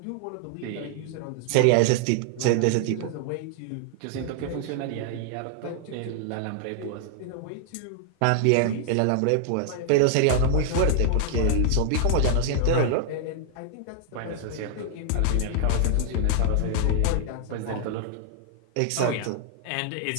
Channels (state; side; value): different; both; correlation 0.00